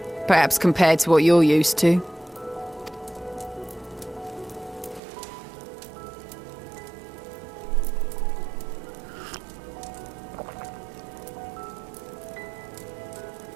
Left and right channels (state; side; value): drops out; left; at 5.0 s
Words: Perhaps compared to what you're used to.